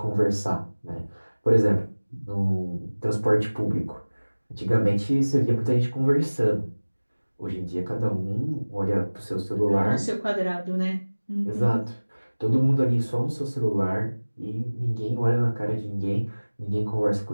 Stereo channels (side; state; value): both; inverted; correlation -1.00